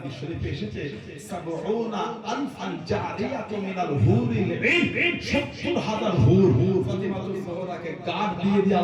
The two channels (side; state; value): both; identical; correlation 1.00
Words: শরীফে এসেছে সাবউনা আনফান জারিয়াতু মিনাল হুরিল ঈন ৭০,০০০ হুর ফাতিমাতুজ জোহরাকে গার্ড দিয়ে